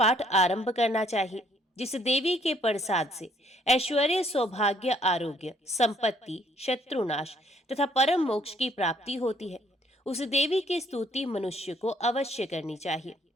आरंभ करना चाहिए। जिस देवी के प्रसाद से ऐश्वर्य, सौभाग्य, आरोग्य, संपत्ति, शत्रुनाश तथा परम मोक्ष की प्राप्ति होती है, उस देवी की स्तुति मनुष्य को अवश्य करनी चाहिए।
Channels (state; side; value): normal; both; correlation 0.64